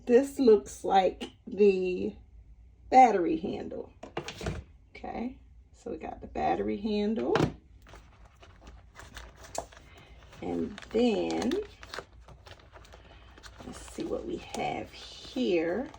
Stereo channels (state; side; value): identical; both; correlation 1.00